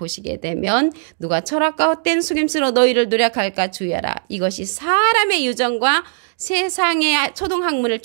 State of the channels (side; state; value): left; silent; digital silence